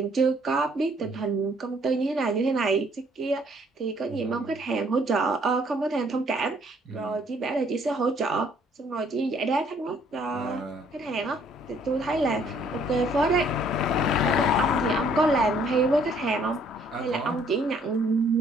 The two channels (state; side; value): normal; both; correlation 0.63